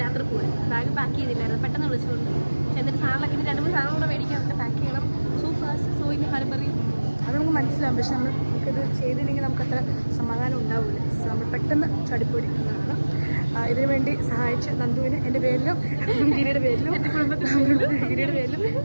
രാത്രി പോകാൻ. ബാഗ് പാക്ക് ചെയ്തില്ലായിരുന്നു, പെട്ടെന്ന് വിളിച്ചുകൊണ്ട്. എന്നിട്ട് സാധനങ്ങളൊക്കെ ഇനി 2-3 സാധനം കൂടെ മേടിക്കാൻ പാക്ക് ചെയ്യണം. സോയിന് ഹർബറി അത് നമുക്ക് മനസ്സിലാവും. പക്ഷെ നമുക്കിത് ചെയ്തില്ലെങ്കിൽ നമുക്കത്ര സമാധാനം ഉണ്ടാവില്ല. നമ്മൾ പെട്ടെന്ന് ചടിപ്പൊടിക്കുന്നതാണ്. ഇതിനു വേണ്ടി സഹായിച്ച നന്ദുവിന് എൻ്റെ പേരിലും ഗിരിയുടെ പേരിലും എൻ്റെ ഗിരിയുടെ പേരിലും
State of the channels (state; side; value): inverted; both; correlation -1.00